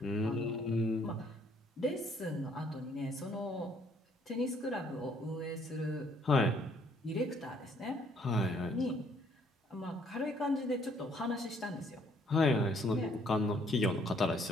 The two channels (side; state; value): both; normal; correlation 0.65